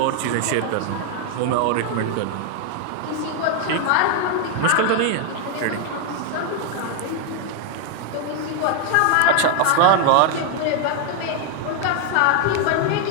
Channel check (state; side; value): different; both; correlation 0.00